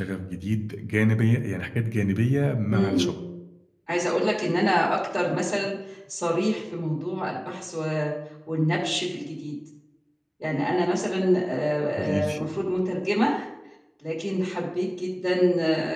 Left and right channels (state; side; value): identical; both; correlation 1.00